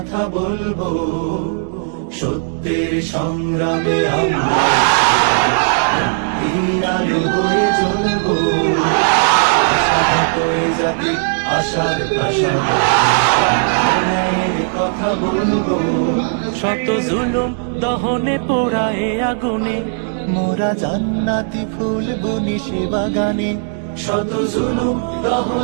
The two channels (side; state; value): left; silent; digital silence